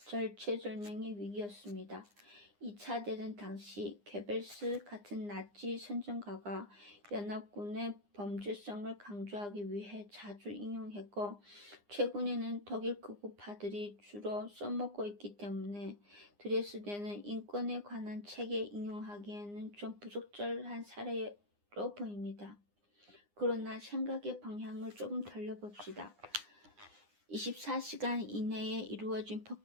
위기였습니다. 2차 대전 당시 괴벨스 같은 나치 선전가가 연합군의 범죄성을 강조하기 위해 자주 인용했고, 최근에는 독일 극우파들이 주로 써먹고 있기 때문에 드레스덴은 인권에 관한 책에 인용하기에는 좀 부적절한 사례로 보입니다. 그러나 생각의 방향을 조금 돌려봅시다. 24시간 이내에 이루어진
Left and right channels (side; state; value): left; late; 9.8 ms